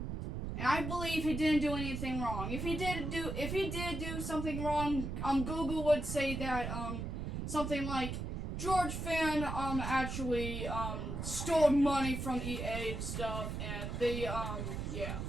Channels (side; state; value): right; noise; rumble, 4 dB below the sound